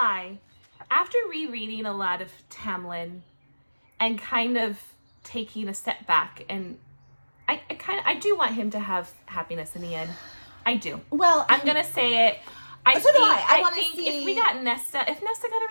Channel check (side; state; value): both; inverted; correlation -1.00